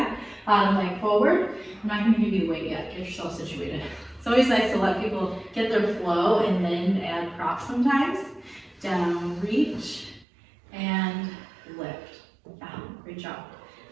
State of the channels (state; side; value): drops out; left; at 10.2 s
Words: bottom leg forward. I'm not gonna give you the weight yet. Get yourself situated. It's always nice to let people get their flow and then add props sometimes. Down, reach, and lift. Yeah, great job.